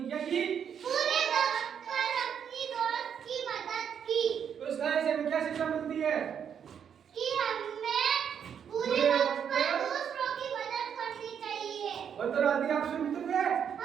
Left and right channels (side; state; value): left; quieter; 8.0 dB